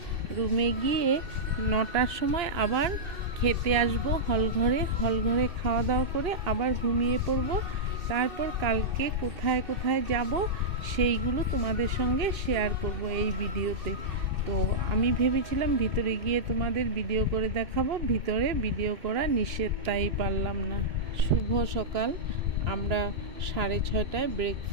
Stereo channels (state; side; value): late; left; 2.6 ms